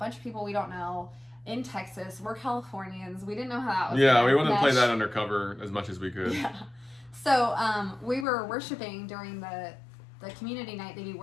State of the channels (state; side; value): drops out; right; at 8.2 s